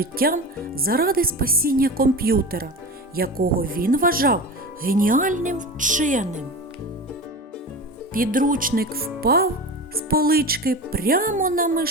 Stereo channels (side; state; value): both; normal; correlation 0.29